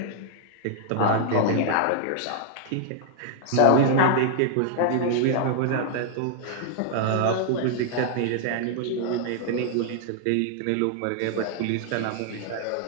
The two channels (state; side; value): different; both; correlation 0.00